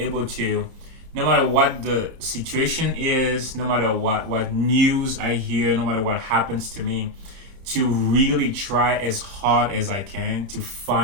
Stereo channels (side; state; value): left; late; 31 ms